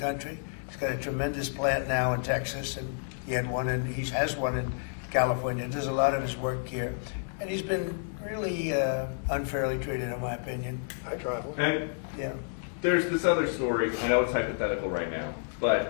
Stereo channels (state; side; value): silent; right; digital silence